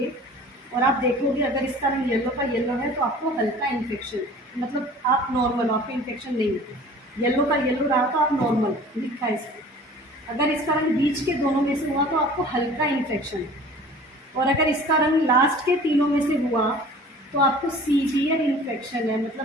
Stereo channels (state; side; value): normal; both; correlation 0.45